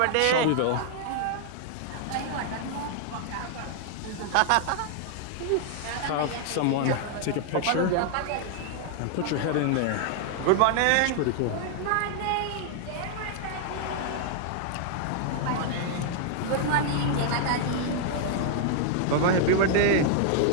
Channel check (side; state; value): both; different; correlation 0.00